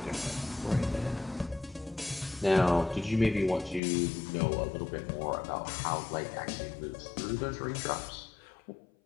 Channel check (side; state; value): right; drops out; at 3.8 s